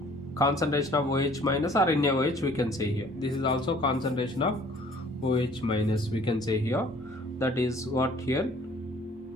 concentration of OH minus or NaOH, we can say here. This is also concentration of OH minus, we can say here. That is what here?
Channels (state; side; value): normal; both; correlation 0.55